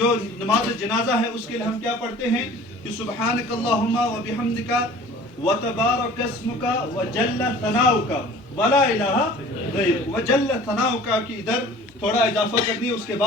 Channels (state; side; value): normal; both; correlation 0.46